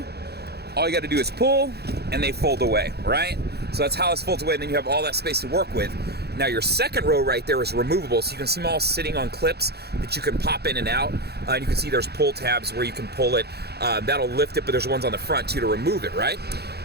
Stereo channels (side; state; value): left; late; 0.47 ms